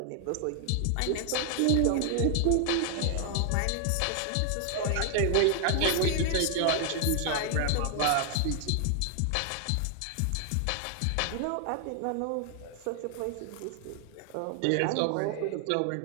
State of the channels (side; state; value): both; different; correlation 0.00